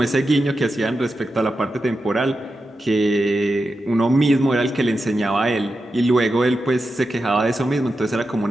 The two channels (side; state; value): both; normal; correlation 0.89